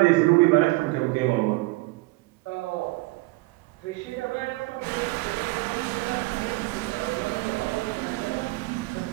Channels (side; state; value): left; quieter; 22.9 dB